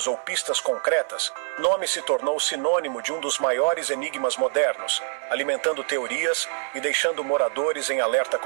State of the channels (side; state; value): left; silent; 62 dB below the other